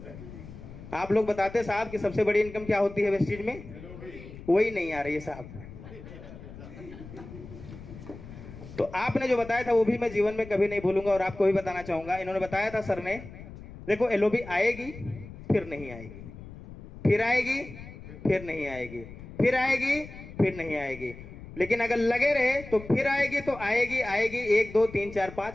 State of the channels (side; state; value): left; noise; rumble, 15 dB below the sound